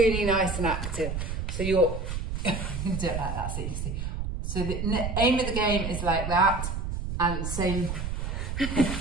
nice and active. So you're do it like that so you can see. So the aim of the game is like that, and the same.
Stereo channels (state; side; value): noise; right; rumble, 4 dB below the sound